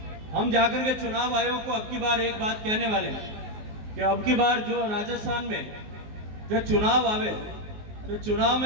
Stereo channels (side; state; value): left; late; 19 ms